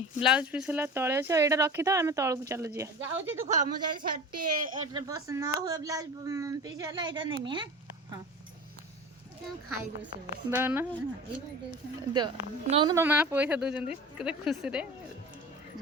ବ୍ଲାଉଜ ପିସ୍ ହେଲା ତଳେ ଅଛି ଆଉ ଏଇଟା ରଖିଥାଅ ଆମେ ତଳକୁ ଚାଲୁ ଯିବା ଯାଉଛି ତୁ କହ ମୁଁ ଯଦି ଶାଢ଼ୀ ଏଟା ପସନ୍ଦ ନ ହୁଏ ବ୍ଲାଉଜ ପିସ୍ ହେଲା ଏଇଟା ନେମି ହଁ ଖାଇଦେବେ ସେ ଦଉନ ନଉନ ତମ ମା ପଇସା ଦଉଛନ୍ତି କେତେ ଖୁସିରେ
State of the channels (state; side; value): normal; both; correlation 0.35